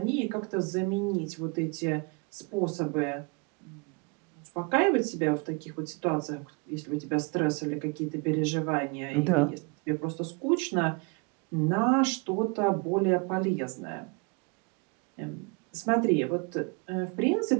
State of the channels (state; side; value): quieter; left; 31.3 dB